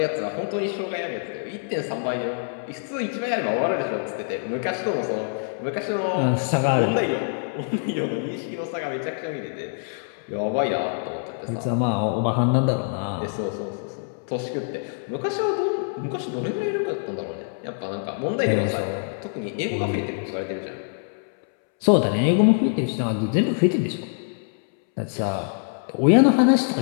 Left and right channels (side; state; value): right; silent; 62 dB below the other